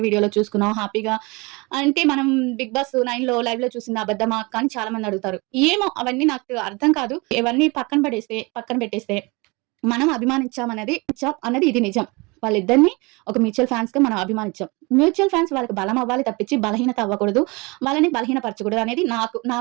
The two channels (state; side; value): quieter; left; 26.4 dB